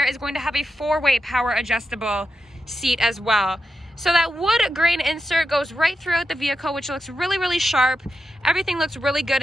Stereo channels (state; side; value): normal; both; correlation 0.88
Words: is going to have a 4-way power adjustable seat as well. So that wood grain insert goes right throughout the vehicle, which looks really sharp. Everything looks really good